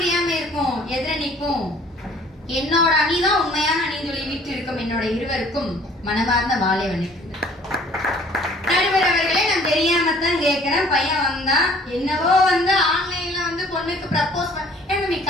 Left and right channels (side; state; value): both; normal; correlation 0.54